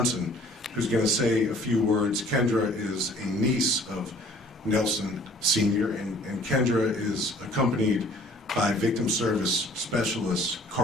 who's going to say a few words. Kendra is a niece of Nelson Sr., and Kendra is accompanied by Victim Service Specialist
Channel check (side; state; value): both; normal; correlation 0.53